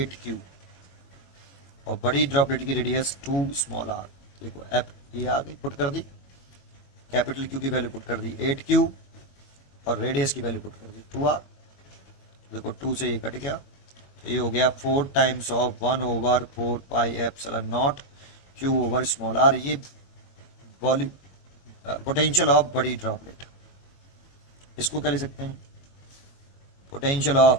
और बड़ी ड्रॉपलेट की रेडियस 2 स्मॉल आर। देखो एप ये आ गई, पुट कर दी, कैपिटल क्यू की वैल्यू पुट कर दी 8q, और रेडियस की वैल्यू पुट कर दी 2r। देखो 2 से ये कट गया, तो ये हो गया 4 times of 1/4 pi epsilon nought q over small R. ये वॉल्यूम पोटेंशियल ऑफ बड़ी ड्रॉपलेट। इसको क्या लिख सकते हैं? Potential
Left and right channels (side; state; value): right; late; 22 ms